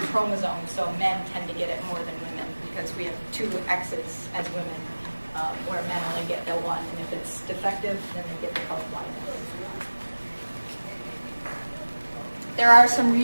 chromosome. So men tend to get it more than women because we have 2 X's as women. Where men only get the 1, and if it's defective, then they get the color blindness. There are some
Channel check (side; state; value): both; inverted; correlation -1.00